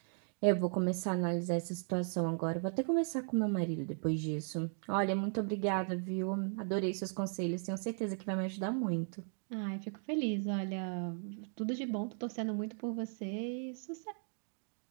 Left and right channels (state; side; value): silent; left; 53 dB below the other